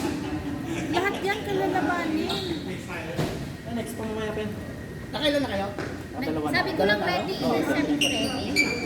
Lahat yan kalalabanin. Next pa mamaya pen. Nakailan na kayo? Dalawa na. Sabi ko lang ready. Sabi ko ready.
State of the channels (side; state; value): both; identical; correlation 1.00